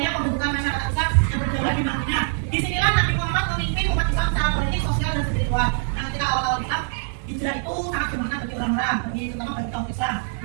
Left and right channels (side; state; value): left; silent; digital silence